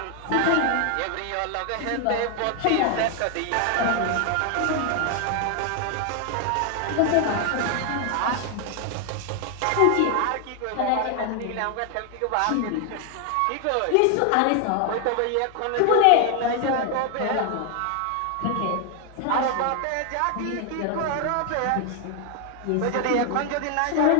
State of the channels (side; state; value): both; different; correlation 0.00